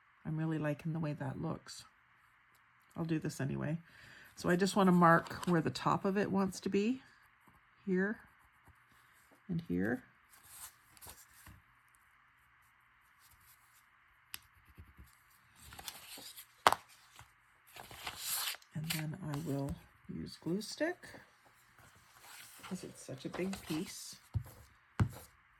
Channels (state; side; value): identical; both; correlation 1.00